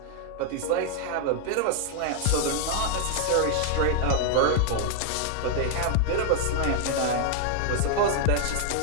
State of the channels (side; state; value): both; different; correlation 0.00